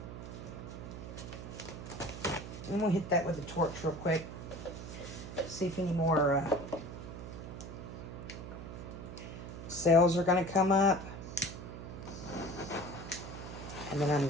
I'm going to hit that with a torch real quick. See if any more cells are going to come up. And then I'm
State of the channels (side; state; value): right; noise; hum, 10 dB below the sound